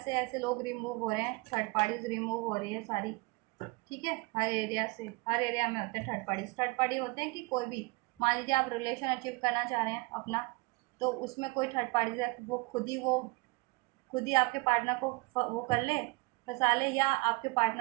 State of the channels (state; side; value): quieter; left; 25.3 dB